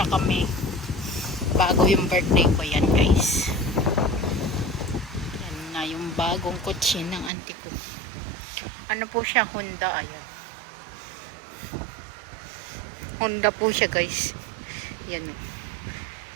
kami bago yung birthday ko, yan guys. Yan na yung bagong kotse ng auntie ko. Ano po siya, Honda, ayan. Honda po siya guys. Yan o.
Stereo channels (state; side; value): drops out; left; at 7.3 s